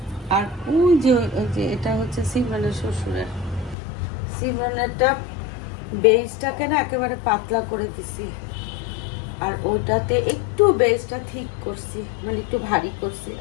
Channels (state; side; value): drops out; right; at 3.8 s